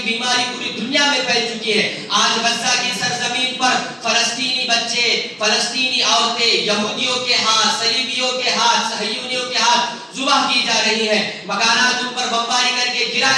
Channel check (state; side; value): identical; both; correlation 1.00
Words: بیماری پوری دنیا میں پھیل چکی ہے. آج غزہ کی سرزمین پر فلسطینی بچے، فلسطینی عورتیں یہودیوں کے ہاتھ، صلیبیوں کے ہاتھ، صہیونیوں کے ہاتھ ذبح کی جا رہی ہیں. مکانات ان پر بمباری کر کے